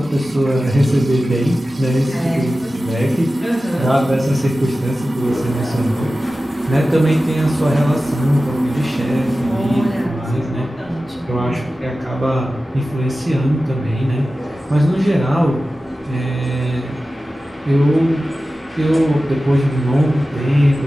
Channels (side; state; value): both; normal; correlation 0.95